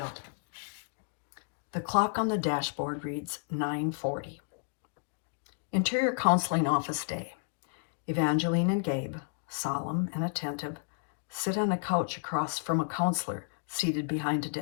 The clock on the dashboard reads 9:40. Interior counseling office day. Evangeline and Gabe, solemn and attentive, sit on a couch across from a counselor seated behind a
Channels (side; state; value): right; silent; digital silence